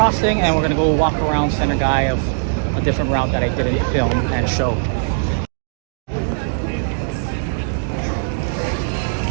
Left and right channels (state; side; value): silent; left; digital silence